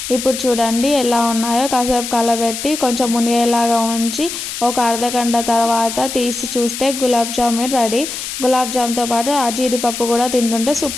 ఇప్పుడు చూడండి ఎలా ఉన్నాయో. కాసేపు కలబెట్టి కొంచెం మునిగేలాగా ఉంచి ఒక అర్ధగంట తర్వాత తీసి చూస్తే గులాబ్ జామున్ రెడీ. గులాబ్ జామ్తో పాటు ఆ జీడిపప్పు కూడా తింటుంటే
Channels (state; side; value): noise; left; hiss, 7 dB below the sound